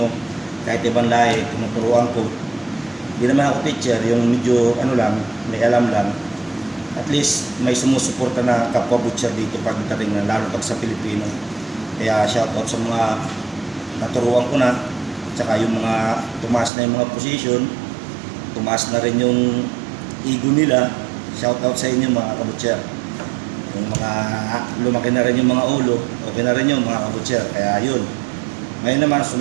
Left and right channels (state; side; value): drops out; left; at 16.7 s